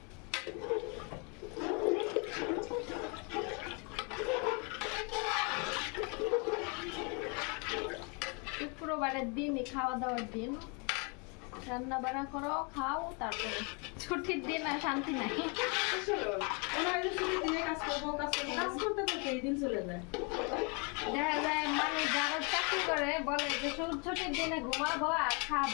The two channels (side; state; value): right; quieter; 33.7 dB